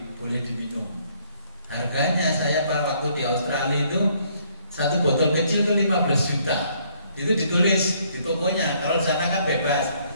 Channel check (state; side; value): inverted; both; correlation -0.66